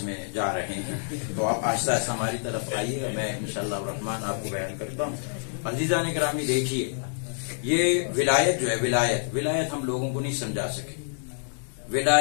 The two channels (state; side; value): silent; right; 60 dB below the other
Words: میں جا رہے ہیں، تو آپ آہستہ آہستہ ہماری طرف آئیے، میں انشاءاللہ الرحمن آپ کو بیان کرتا ہوں. عزیزان گرامی دیکھیے، یہ ولایت جو ہے، ولایت ہم لوگوں کو نہیں سمجھا سکے.